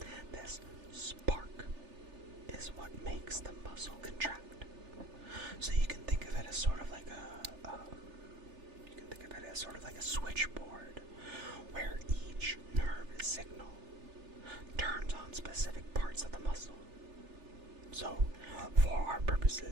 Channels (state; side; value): late; left; 3.4 ms